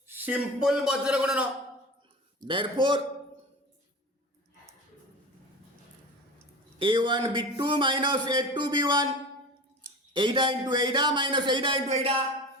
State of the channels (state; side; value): normal; both; correlation 0.32